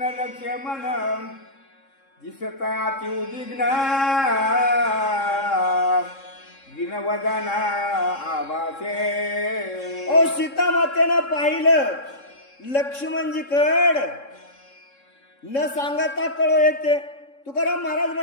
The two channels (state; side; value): late; right; 3.7 ms